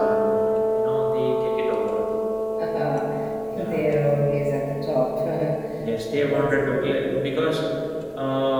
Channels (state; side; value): identical; both; correlation 1.00